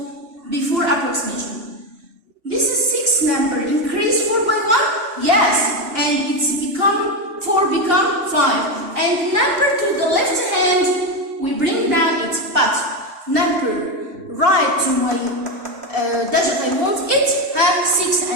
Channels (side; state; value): left; late; 2.8 ms